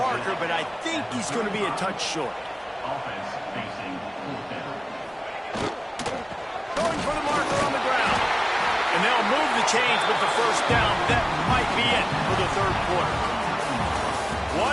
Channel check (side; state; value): both; identical; correlation 1.00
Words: but I think he's going to be a touch short. Offense facing fourth down. Going for the marker on the ground. And they'll move the chains with the first down. That might be it for the 3rd quarter.